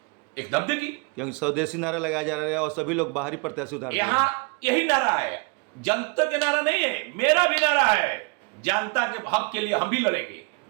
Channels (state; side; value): quieter; left; 30.3 dB